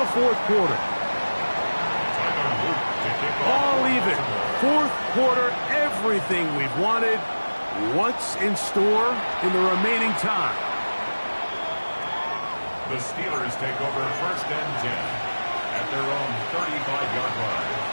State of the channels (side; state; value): both; inverted; correlation -1.00